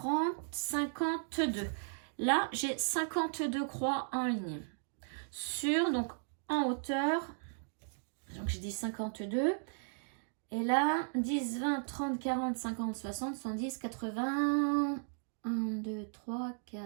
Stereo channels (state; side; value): silent; left; digital silence